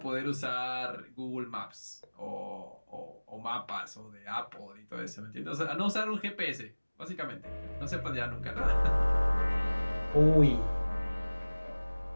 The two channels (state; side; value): inverted; both; correlation -1.00